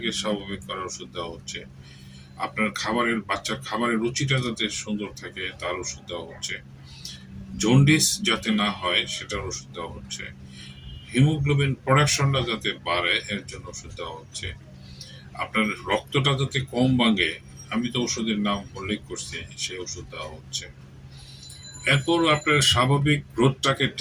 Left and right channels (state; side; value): identical; both; correlation 1.00